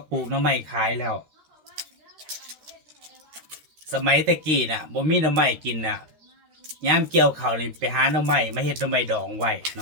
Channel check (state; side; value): late; left; 13 ms